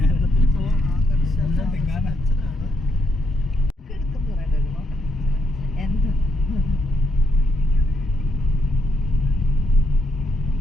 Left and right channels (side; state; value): both; normal; correlation 0.77